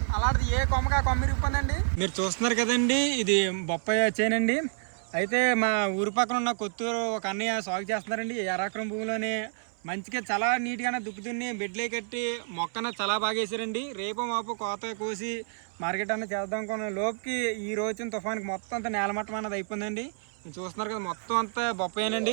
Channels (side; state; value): left; silent; 59 dB below the other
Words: అలాంటిది ఏ కొమ్మగా కొమ్మ ఇరిగిపోయిందండి. మీరు చూస్తున్నారు కదండి, ఇది బొప్పాయి చేనండి. అయితే మా ఊరి పక్కన ఉన్న కొత్తూరు ఒక అన్నయ్య సాగు చేస్తున్నారండి. 1 ఎకరం భూమిలోనే మంచిగా చాలా నీట్గానే దుక్కుతున్ని బెడ్లే కట్టి మొక్కన చాలా బాగా వేసారండి. రేపు మాపు కోత కోసి మార్కెట్ అన్న చేద్దాం అనుకున్న లోపుకి ఈ రోజున తుఫానికి మొత్తం అంతా నేలమట్టం అన్నది అయిపోయిందండి. చూస్తున్నారు కదా, మొత్తం అంతా